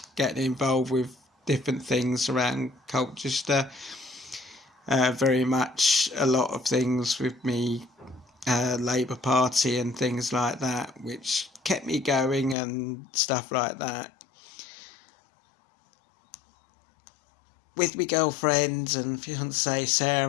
getting involved with different things around Colchester, very much a lot of things with me Labour Party and things like that, which kept me going and stuff like that. With my girlfriend and fiancée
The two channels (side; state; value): right; drops out; at 12.6 s